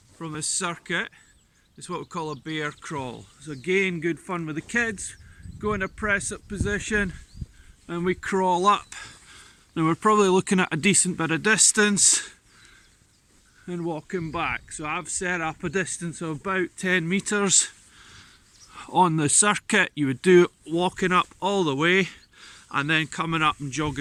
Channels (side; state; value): both; identical; correlation 1.00